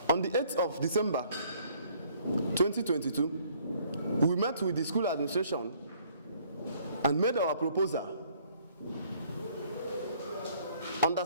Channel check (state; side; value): inverted; both; correlation -0.60